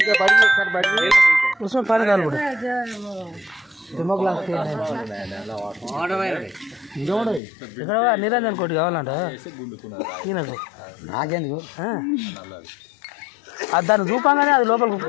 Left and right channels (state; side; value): drops out; right; at 7.4 s